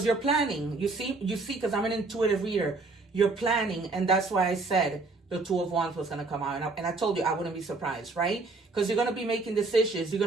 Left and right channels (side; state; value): left; quieter; 3.6 dB